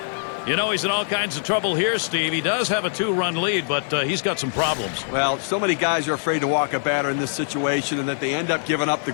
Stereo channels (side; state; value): right; silent; digital silence